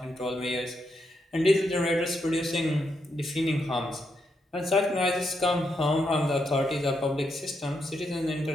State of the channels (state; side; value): normal; both; correlation 0.81